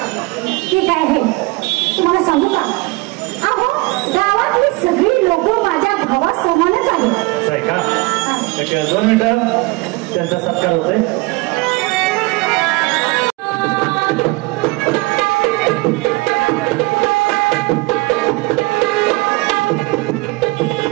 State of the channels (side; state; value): left; quieter; 23.6 dB